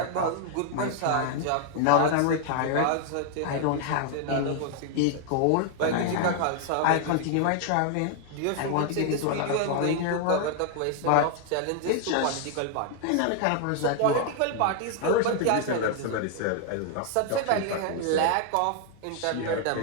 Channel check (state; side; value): different; both; correlation 0.00